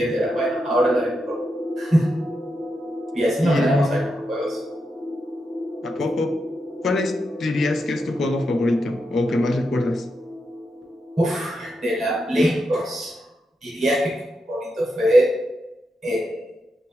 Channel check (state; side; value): normal; both; correlation 0.85